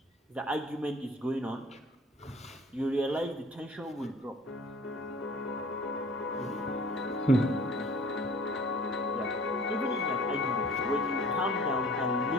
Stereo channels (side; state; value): both; normal; correlation 0.48